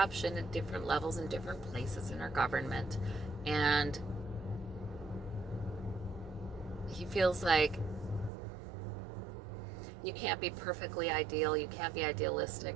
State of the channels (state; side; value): drops out; left; at 8.3 s